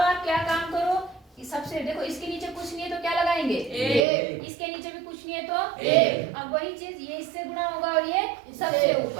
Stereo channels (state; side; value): drops out; left; at 4.0 s